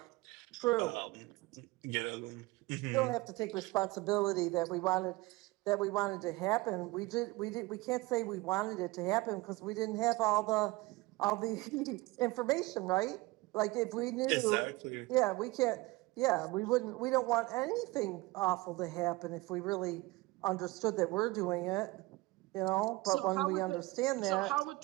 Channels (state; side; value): quieter; left; 21.8 dB